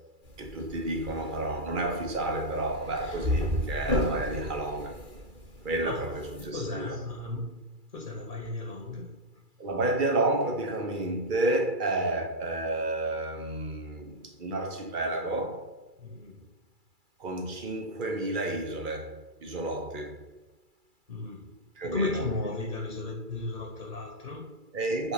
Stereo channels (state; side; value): late; left; 2.3 ms